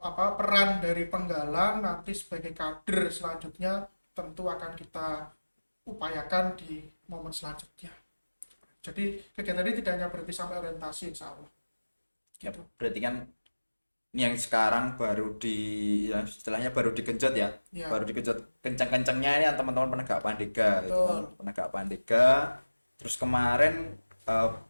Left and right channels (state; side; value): inverted; both; correlation -1.00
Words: peran dari penggalang nanti sebagai kader selanjutnya tentu akan kita upayakan di momen selanjutnya. Jadi kegiatan ini tidak hanya berhenti sampai orientasi, insya Allah. Ya, berarti kan ini yang sekarang baru ya istilahnya baru digenjot ya. Ya. Baru digenjot kencang-kencangnya ini yang teman-teman penegak pandega gitu kan. Betul. Penegak pandega. Terus kemarin